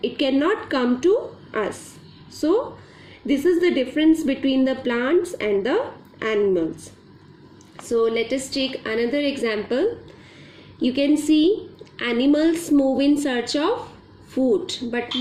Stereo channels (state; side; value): identical; both; correlation 1.00